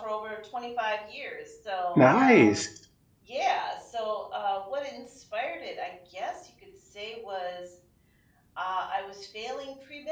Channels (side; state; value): both; identical; correlation 1.00